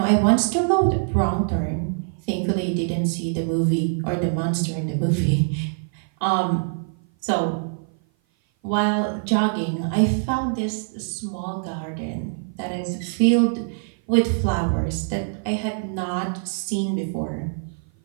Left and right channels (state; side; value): silent; left; 56 dB below the other